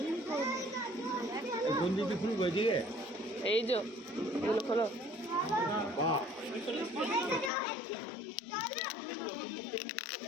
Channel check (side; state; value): right; drops out; at 7.5 s